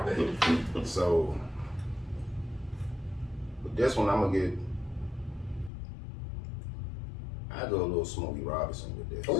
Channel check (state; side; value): drops out; right; at 5.7 s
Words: So, with this one, I'm gonna get. I go a little Smokey Robinson with this.